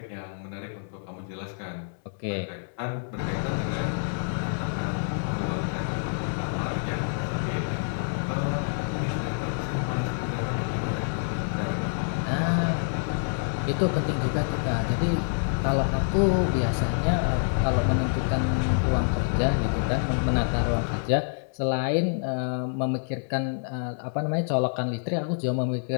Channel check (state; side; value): silent; right; 58 dB below the other